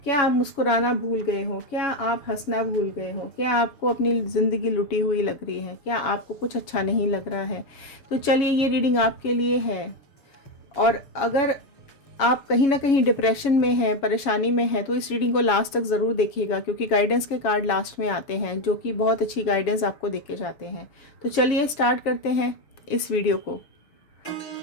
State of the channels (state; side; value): late; right; 7.2 ms